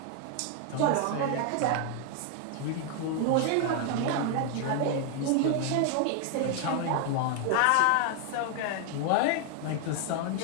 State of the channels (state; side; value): different; both; correlation 0.00